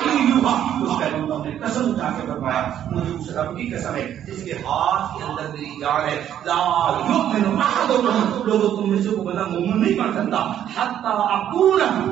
یوحى. اس پیغمبر نے قسم اٹھا کے فرمایا مجھے اس رب کی قسم ہے جس کے ہاتھ کے اندر میری جان ہے، لا یؤمن احدکم، لوگوں تم میں سے کوئی بندہ مومن نہیں بن سکتا حتی اکون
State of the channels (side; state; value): left; quieter; 10.5 dB